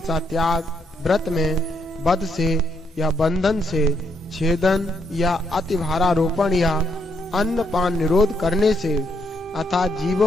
त्याग, व्रत में वध से या बंधन से, छेदन या अतिभारारोपण या अन्न पान निरोध करने से, अर्थात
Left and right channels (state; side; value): normal; both; correlation 0.76